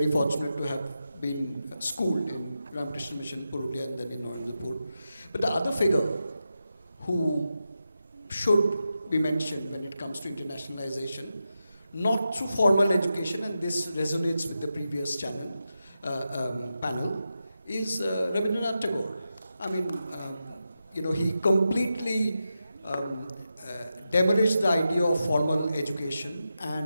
fortunate to have been schooled in Ramakrishna Mission, Purulia, and then in Narendra. But the other figure who should be mentioned when it comes to internationalization, not through formal education, and this resonates with the previous panel, is Rabindranath Tagore. I mean, he completely demolished the idea of formal education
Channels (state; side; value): inverted; both; correlation -0.89